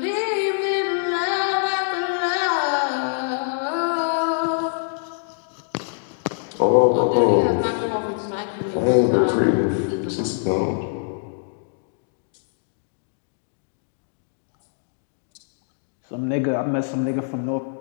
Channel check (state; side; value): silent; right; digital silence